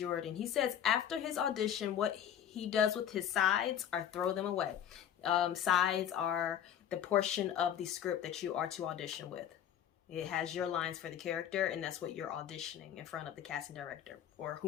He says after his audition, what he does with his sides are throw them away. Sides are the portion of the script that you are to audition with. It has your lines for the character, and that's what you're auditioning in front of the casting director or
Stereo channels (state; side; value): quieter; right; 9.8 dB